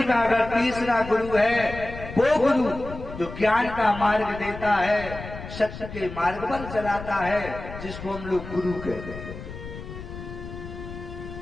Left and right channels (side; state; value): left; noise; rumble, 11 dB below the sound